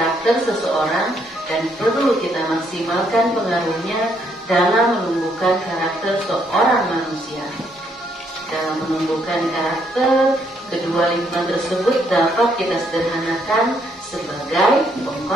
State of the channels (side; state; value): both; normal; correlation 0.72